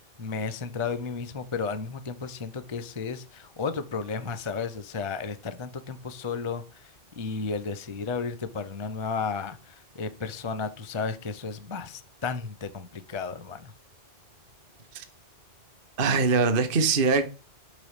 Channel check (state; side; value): late; left; 2.5 ms